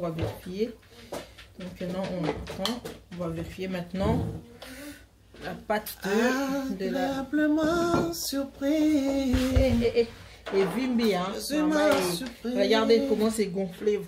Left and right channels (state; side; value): identical; both; correlation 1.00